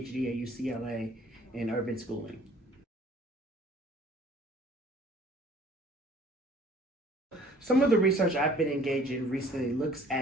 at UCLA in urban schooling. Some of the research I've been engaged in recently looks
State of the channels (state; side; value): normal; both; correlation 0.53